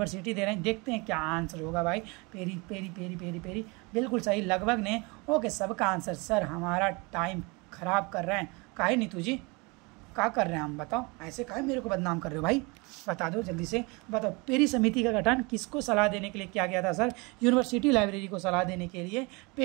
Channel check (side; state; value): left; quieter; 27.5 dB